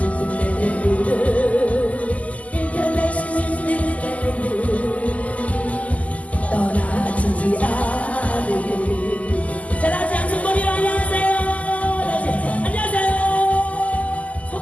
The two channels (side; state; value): right; late; 0.071 ms